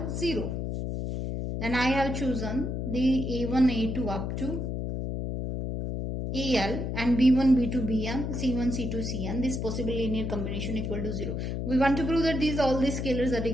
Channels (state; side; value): noise; left; hum, 3 dB below the sound